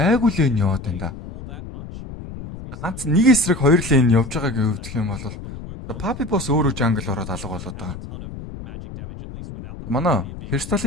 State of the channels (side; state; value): left; noise; rumble, 12 dB below the sound